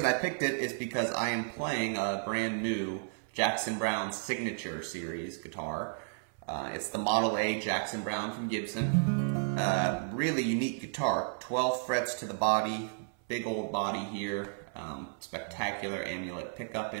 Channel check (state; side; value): silent; left; 56 dB below the other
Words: I picked it is because I am playing a brand new Jackson Browne Signature Series guitar. It's the Model A Jackson Browne from Gibson. Really unique guitar, 12 frets to the body, big old body here, spectacular amulet pickup